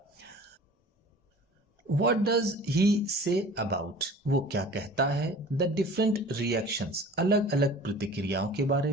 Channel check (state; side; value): normal; both; correlation 0.44